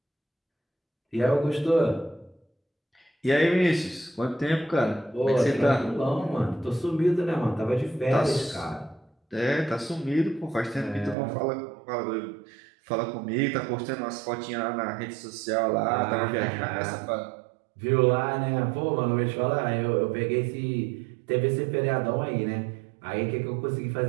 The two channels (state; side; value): drops out; left; at 11.2 s